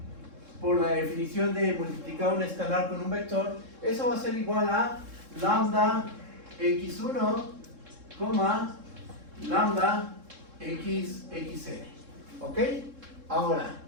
por la definición de multiplicar un escalar con un vector. Eso va a ser igual a lambda x1, lambda xn. ¿Ok? Ahora,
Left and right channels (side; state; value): left; late; 3.7 ms